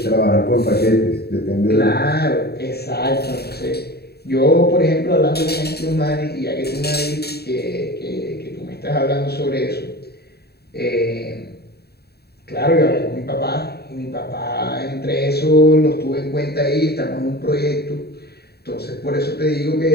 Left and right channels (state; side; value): late; right; 0.47 ms